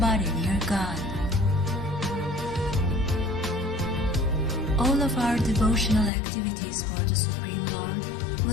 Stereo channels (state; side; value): drops out; right; at 6.1 s